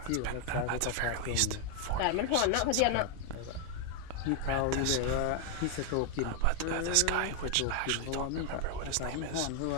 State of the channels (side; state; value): both; different; correlation 0.00